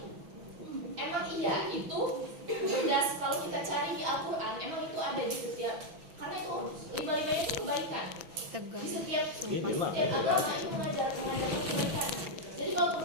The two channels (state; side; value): late; left; 6.0 ms